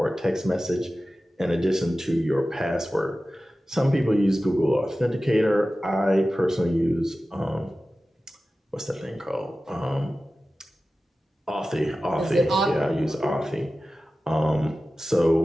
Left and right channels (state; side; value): normal; both; correlation 0.95